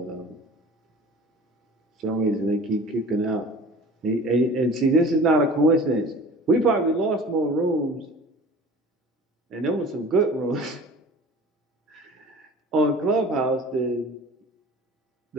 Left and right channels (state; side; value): normal; both; correlation 0.43